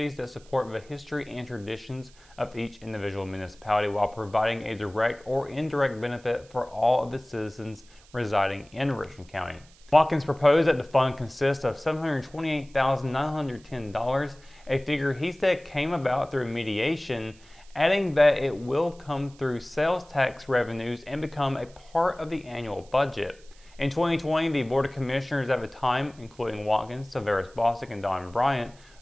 that support the history and traditions of each individual municipality while providing a direct or indirect benefit for all of the citizens residing in Richmond County. Watkins proposed that the fund consist of $728,910, a figure he said came about through mediation, adding that it will come through sales tax revenues and become a part of the annual budget. In 2020, the Board of Commissioners at the time, including Watkins, Tavares Bostic, and Don Bryant,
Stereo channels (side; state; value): right; noise; hiss, 27 dB below the sound